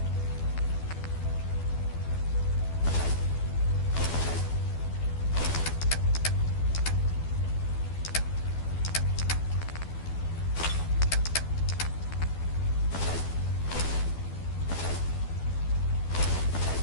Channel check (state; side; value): late; right; 12 ms